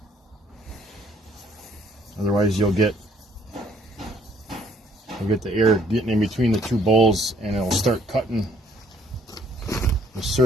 Otherwise you'll get the air getting in between the two bowls, and it'll start cutting the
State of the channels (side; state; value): both; normal; correlation 0.64